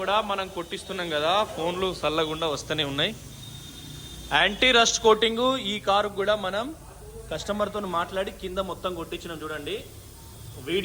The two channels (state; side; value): identical; both; correlation 1.00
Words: కూడా మనం కొట్టిస్తున్నాం కదా. ఫోన్లు చల్లకుండా వస్తూనే ఉన్నాయి. యాంటీ రస్ట్ కోటింగ్ ఈ కారు కూడా మనం కస్టమర్తో మాట్లాడి కింద మొత్తం కొట్టించినాం. చూడండి